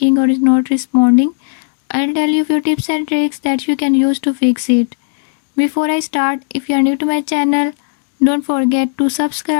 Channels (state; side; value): silent; right; digital silence